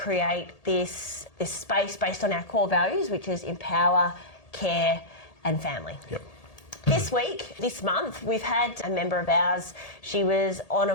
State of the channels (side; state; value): right; late; 1.8 ms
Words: this space based on our core values, which is empower, care and family. Yep. This month, we've had a member of ours. She was on a